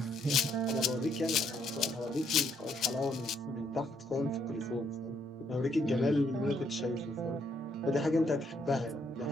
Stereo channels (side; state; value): both; normal; correlation 0.72